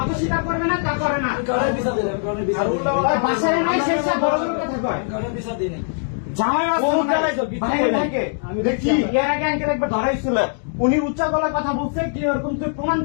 স্বীকার করবে না, তা করে না। বাসায় নাই সে বড় বড় কথা কয়। জামাই ভাইকে আমি দেখছি এর আগে আঙ্কেল একবার ধরাইছিল, উনি উচ্চ গলায় কথা বলছে কি ওরকম তুই প্রমাণ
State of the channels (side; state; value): right; silent; digital silence